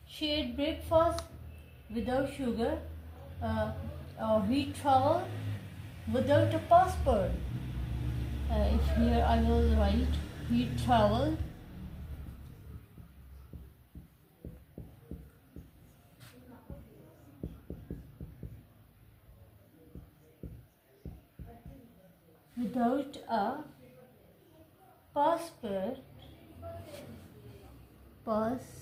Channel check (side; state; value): both; identical; correlation 1.00